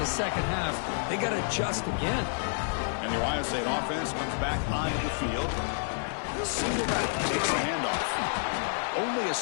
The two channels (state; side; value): silent; right; digital silence